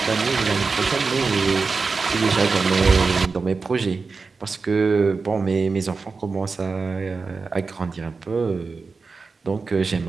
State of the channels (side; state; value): left; quieter; 4.5 dB